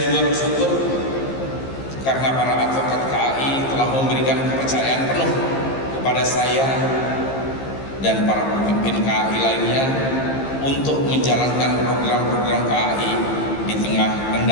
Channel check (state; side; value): late; right; 15 ms